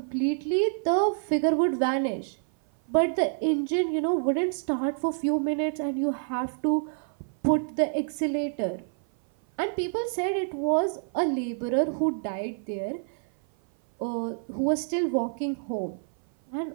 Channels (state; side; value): silent; left; 56 dB below the other